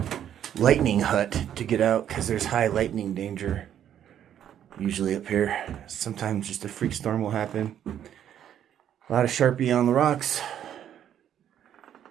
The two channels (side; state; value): left; quieter; 10.1 dB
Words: lightning hut to get out, because there's high lightning danger usually up here. Sometimes just a freak storm will happen. A lot of Sharpie on the rocks,